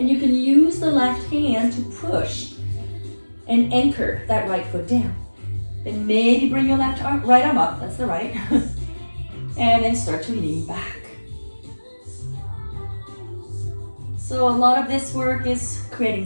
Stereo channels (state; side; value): inverted; both; correlation -1.00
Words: you can use the left hand to push and anchor that right foot down. Then maybe bring your right arm up, that's the right. And then start to lean back. So a lot of this work is creating